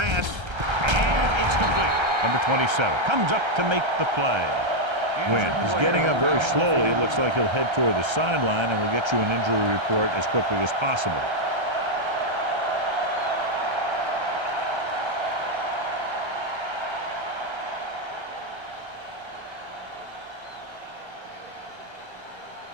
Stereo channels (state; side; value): late; left; 1.3 ms